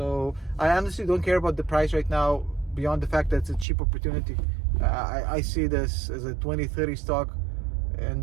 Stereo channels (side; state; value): left; drops out; at 3.7 s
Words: I honestly don't care about the price right now beyond the fact that it's a cheap opportunity. I see this as a 2030 stock,